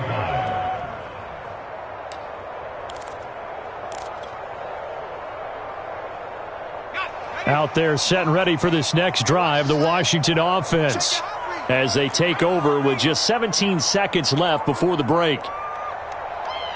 line. Out there set and ready for this next drive, the Washington offense, as they take over with just 17 seconds left before the break.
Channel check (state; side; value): identical; both; correlation 1.00